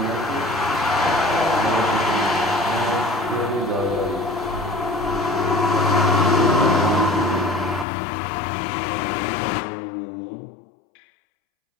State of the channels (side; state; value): right; drops out; at 7.9 s